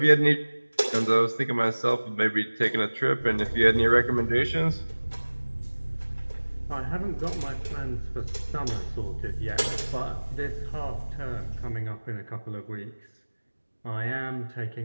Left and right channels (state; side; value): inverted; both; correlation -1.00